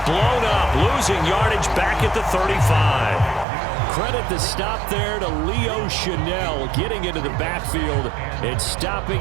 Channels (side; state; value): left; drops out; at 3.5 s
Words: blown up, losing yardage back at the 35. Credit the stop there to Leo Chanel, getting into the backfield and stopping